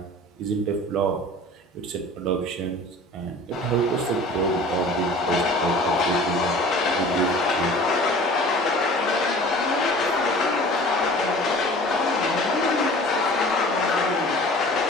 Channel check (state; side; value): normal; both; correlation 0.44